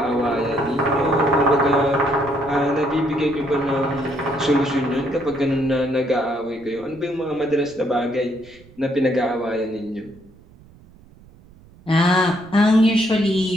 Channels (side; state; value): right; noise; rumble, 25 dB below the sound